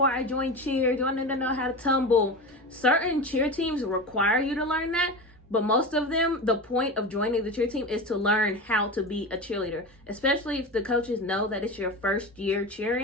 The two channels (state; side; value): normal; both; correlation 0.25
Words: I join cheer? Do I need to know how to tumble? Certain cheer teams require you to learn that. But most of them, the point of joining the cheer team is to learn how to be a cheerleader. Especially if the coaches know that it's your first year